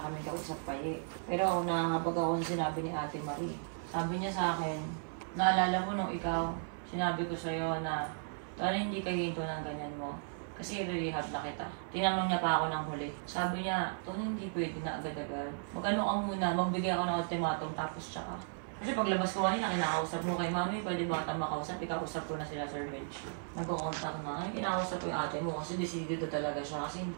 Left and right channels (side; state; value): left; silent; 54 dB below the other